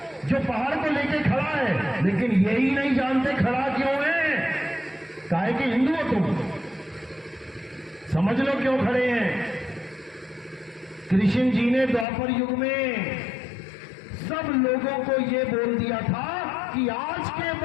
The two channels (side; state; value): right; drops out; at 12.1 s